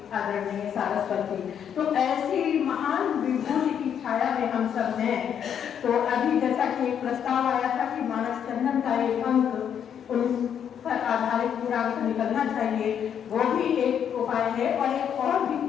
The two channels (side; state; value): right; quieter; 8.6 dB